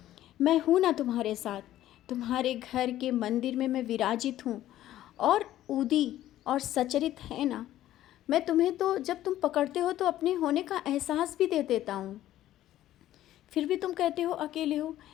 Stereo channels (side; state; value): right; quieter; 13.5 dB